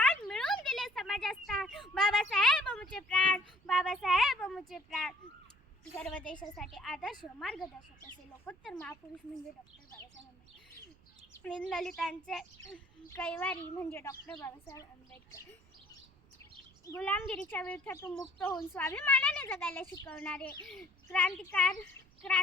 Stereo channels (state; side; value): noise; right; rumble, 29 dB below the sound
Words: मिळून दिले समाजात स्थान बाबासाहेब आमचे प्राण बाबासाहेब बाबासाहेब मुझे प्राण सर्व देशासाठी आदर्श मार्गदर्शक असे लोकोत्तर महापुरुष म्हणजे डॉक्टर बाबासाहेब आंबेडकर. दीनदलितांचे कैवारी म्हणजे डॉक्टर बाबासाहेब आंबेडकर. गुलामगिरीच्या विरोधातून मुक्त होऊन स्वाभिमानाने जगायला शिकवणारे